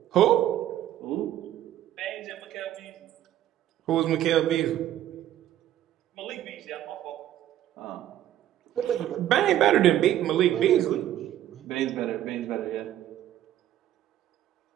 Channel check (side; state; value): left; quieter; 12.4 dB